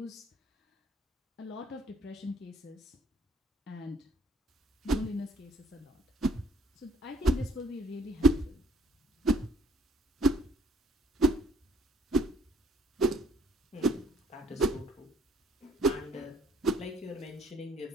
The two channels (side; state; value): both; normal; correlation 0.61